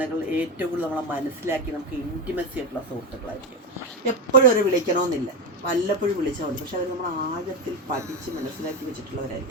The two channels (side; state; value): both; normal; correlation 0.14